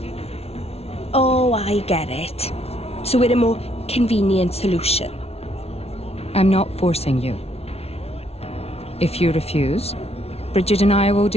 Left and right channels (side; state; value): right; late; 0.30 ms